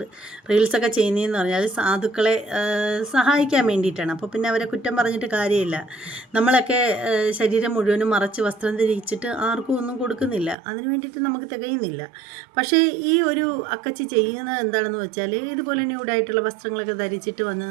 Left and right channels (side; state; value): left; drops out; at 10.6 s